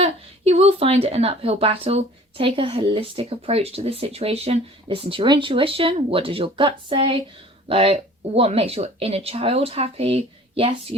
you will find it an uphill battle. Take a holistic approach to this situation. Listen to your intuition. What does your gut say? Like, what makes your inner child happy? Yes,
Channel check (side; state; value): both; normal; correlation 0.48